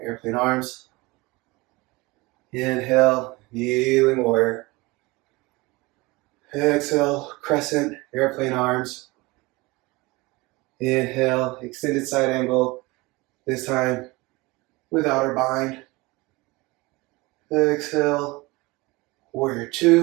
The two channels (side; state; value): left; quieter; 23.0 dB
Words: airplane arms. Inhale, kneeling warrior. Exhale, crescent, airplane arms. Inhale, extended side angle, this time without our bind. Exhale, warrior